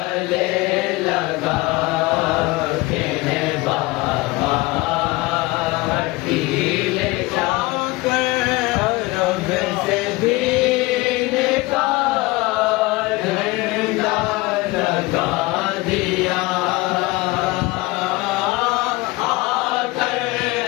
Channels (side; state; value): right; quieter; 21.7 dB